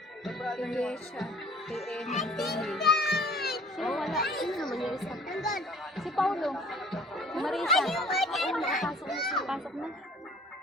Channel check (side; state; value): both; normal; correlation 0.50